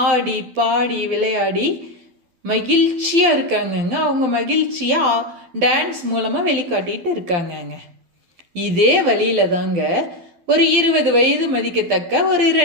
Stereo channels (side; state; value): left; late; 12 ms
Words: ஆடி பாடி விளையாடி மகிழ்ச்சியா இருக்காங்கங்க. அவங்க மகிழ்ச்சியா டான்ஸ் மூலமா வெளிக்காட்டிட்டு இருக்காங்கங்க. இதே வழியில தாங்க ஒரு 20 வயது மதிக்கத்தக்க ஒரு